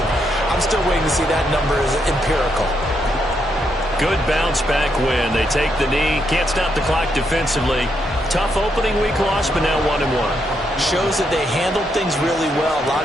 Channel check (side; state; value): both; normal; correlation 0.79